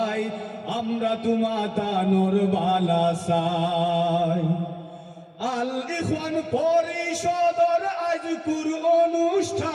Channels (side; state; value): both; identical; correlation 1.00